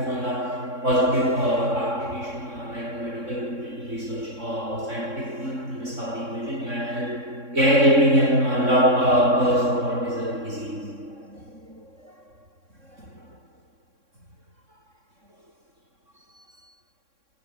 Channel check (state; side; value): late; left; 3.6 ms